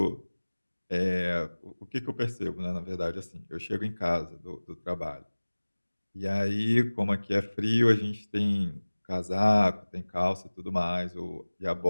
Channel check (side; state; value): both; inverted; correlation -1.00